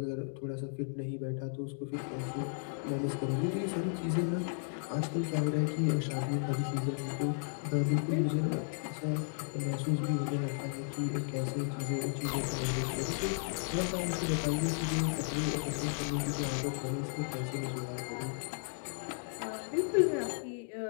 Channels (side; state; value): right; silent; digital silence